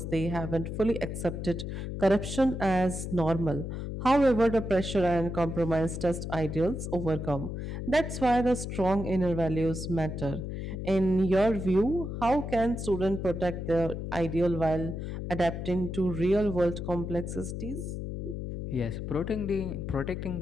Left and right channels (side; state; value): left; noise; hum, 5 dB below the sound